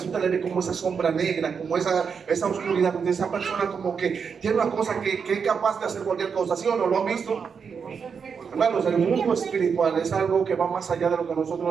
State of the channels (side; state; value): left; quieter; 6.2 dB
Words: usted le ve como esa sombra negra, como esa oscuridad, donde esa persona como que tiene una cosa que es capaz de hacer cualquier cosa, ¿sí o no? ¿Lo han visto? Hermanos, el mundo espiritual es algo que va más allá de lo que